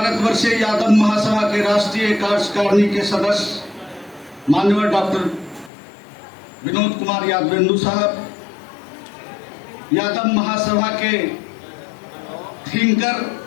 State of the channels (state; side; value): drops out; right; at 5.7 s